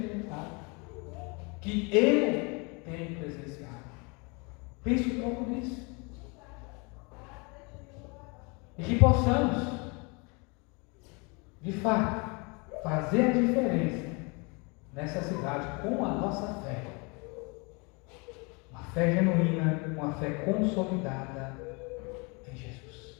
que eu tenho presenciado. Pense um pouco nisso. E que possamos, de fato, fazer a diferença nessa cidade com a nossa fé. Uma fé genuína, uma fé consolidada em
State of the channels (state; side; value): quieter; right; 30.6 dB